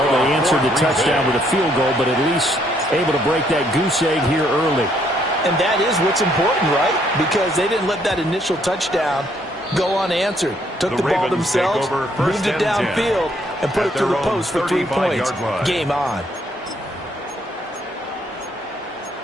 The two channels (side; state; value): both; normal; correlation 0.69